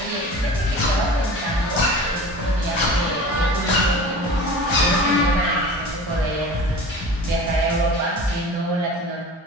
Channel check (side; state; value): both; normal; correlation 0.38